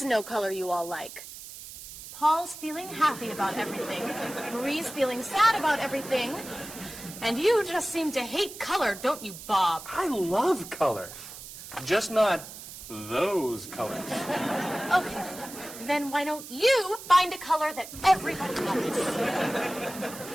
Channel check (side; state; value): right; noise; hiss, 13 dB below the sound